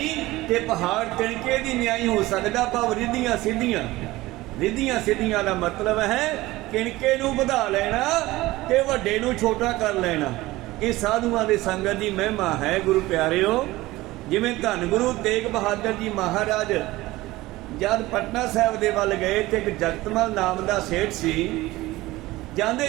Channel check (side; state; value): left; quieter; 18.6 dB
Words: ਤੇ ਪਹਾੜ ਤਿਨਕੇ ਦੀ ਨਿਆਈ ਹੋ ਸਕਦਾ, ਭਾਵ ਰਿੱਧੀਆਂ ਸਿੱਧੀਆਂ। ਰਿੱਧੀਆਂ ਸਿੱਧੀਆਂ ਦਾ ਮਤਲਬ ਹੈ ਕਿਣਕੇ ਨੂੰ ਵਧਾ ਲੈਣਾ ਤੇ ਵੱਡੇ ਨੂੰ ਛੋਟਾ ਕਰ ਲੈਣਾ। ਇਹ ਸਾਧੂਆਂ ਦੇ ਸੰਗਤ ਦੀ ਮਹਿਮਾ ਹੈ ਗੁਰੂ ਪਿਆਰਿਓ। ਜਿਵੇਂ ਧੰਨ ਗੁਰੂ ਤੇਗ ਬਹਾਦਰ ਜੀ ਮਹਾਰਾਜ ਜਦ ਪਟਨਾ ਸਾਹਿਬ ਦੇ ਵੱਲ ਗਏ ਤੇ ਇੱਕ ਜਗਤਮਲ ਨਾਮ ਦਾ ਸੇਠ ਸੀ।